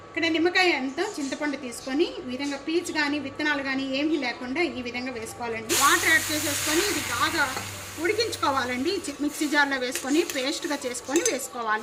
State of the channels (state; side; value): identical; both; correlation 1.00